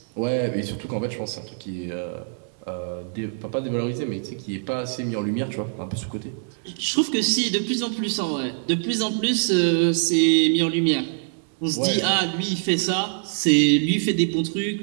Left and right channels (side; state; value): left; silent; digital silence